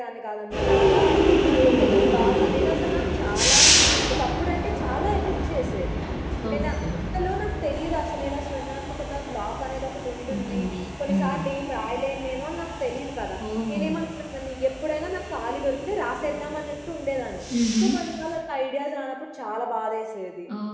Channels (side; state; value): both; identical; correlation 1.00